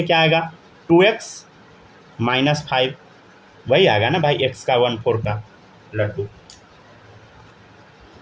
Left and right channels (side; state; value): both; identical; correlation 1.00